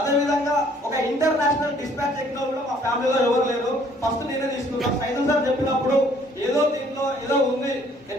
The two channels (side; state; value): both; normal; correlation 0.60